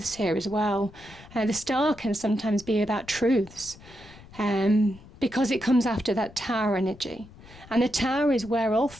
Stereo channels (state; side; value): noise; left; rumble, 21 dB below the sound